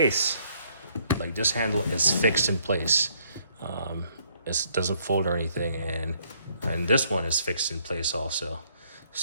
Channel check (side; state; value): both; inverted; correlation -0.68